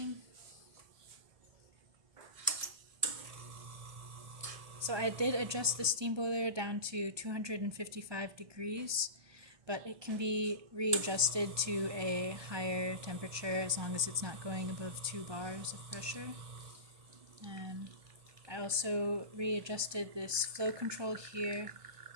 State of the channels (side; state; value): left; late; 1.2 ms